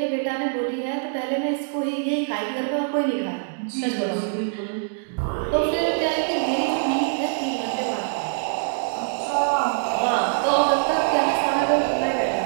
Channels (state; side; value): silent; left; digital silence